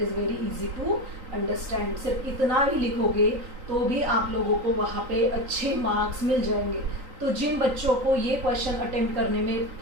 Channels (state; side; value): late; left; 3.9 ms